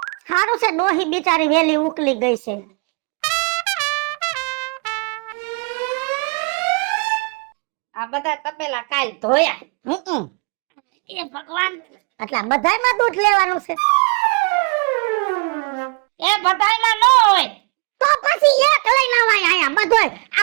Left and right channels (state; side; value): quieter; left; 33.1 dB